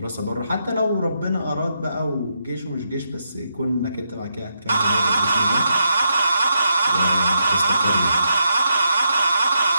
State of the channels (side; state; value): both; inverted; correlation -0.81